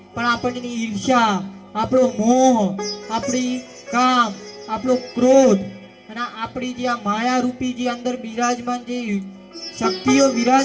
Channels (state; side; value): identical; both; correlation 1.00